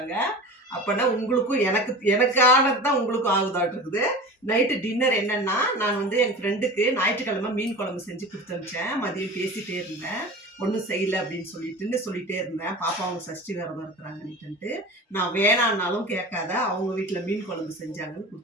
அப்பன்னா உங்களுக்கும் எனக்கானது தான் உங்களுக்கும் ஆகுதாட்டு இருக்குது. நைட்டு டின்னர் என்னன்னா, நான் வந்து என் ஃப்ரெண்டுக்கு ஞாயிற்றுக்கிழமை மீன் குழம்பு செஞ்சு குடுத்து அனுப்பிச்சேன். மதியம் பேசிட்டே இருந்தேன். ஒன்றும் செய்யல அப்படின்னு சொல்லிட்டே இருந்தேன். பாப்பா அவங்க சஷ்டி விரதம் இருக்கிறாங்கன்னுட்டு. நான் வேணான்னாலும் கேட்காத அவங்க வீட்டில் மீன் குழம்பு செஞ்சாங்கன்னு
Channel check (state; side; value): normal; both; correlation 0.34